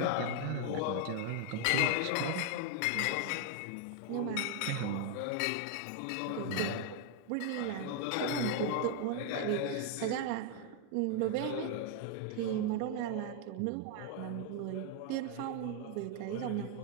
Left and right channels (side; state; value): both; different; correlation 0.00